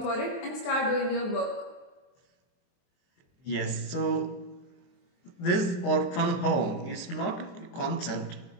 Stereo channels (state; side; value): late; right; 23 ms